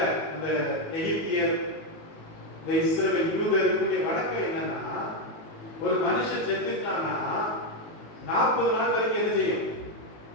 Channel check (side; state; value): right; late; 19 ms